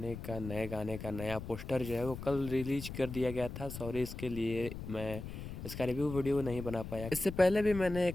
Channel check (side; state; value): left; noise; rumble, 9 dB below the sound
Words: का नया पोस्टर जो है वो कल रिलीज कर दिया गया था। सॉरी इसके लिए मैं इसका रिव्यू वीडियो नहीं बना पाया। इससे पहले भी मैंने